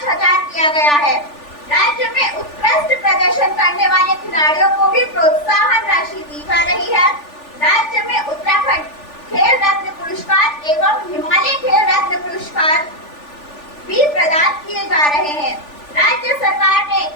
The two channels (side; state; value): right; late; 3.4 ms